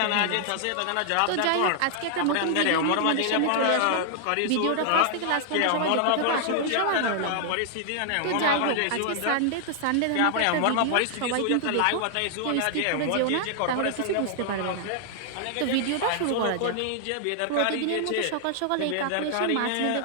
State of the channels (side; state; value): both; different; correlation -0.01